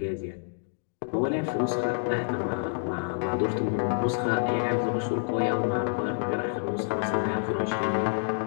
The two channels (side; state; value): right; silent; digital silence